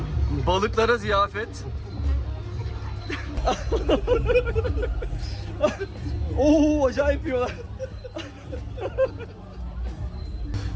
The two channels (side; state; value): both; identical; correlation 1.00